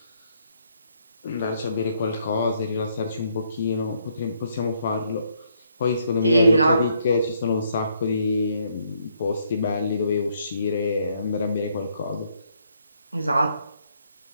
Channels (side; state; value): both; inverted; correlation -0.71